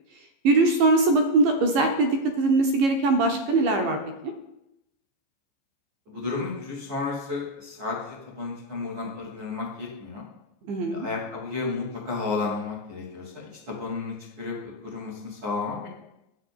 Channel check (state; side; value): late; left; 15 ms